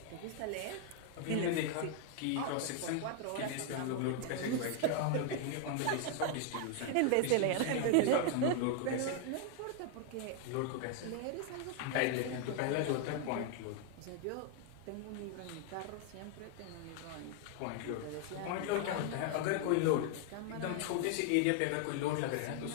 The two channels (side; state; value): both; different; correlation 0.00